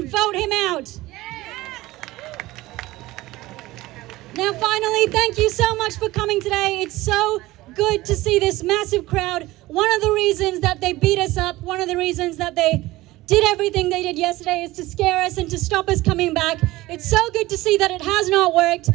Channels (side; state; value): left; quieter; 18.4 dB